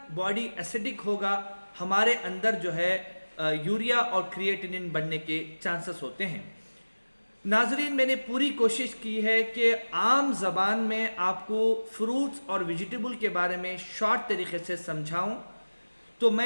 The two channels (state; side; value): inverted; both; correlation -1.00